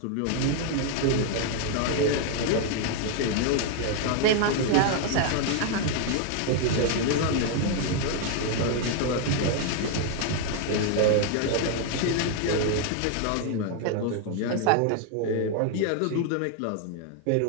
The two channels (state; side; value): different; both; correlation 0.00